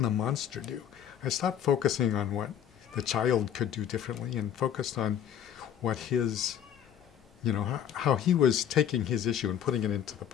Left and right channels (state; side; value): quieter; right; 9.5 dB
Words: the monster do? I stopped focusing on what the child could do differently and focused on what his, you know, how he was taking his issue and putting it into the